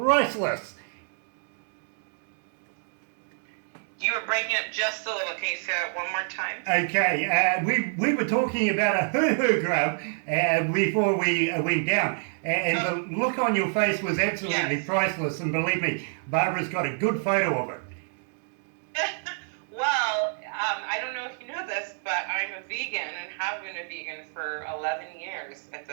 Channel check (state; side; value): silent; left; 60 dB below the other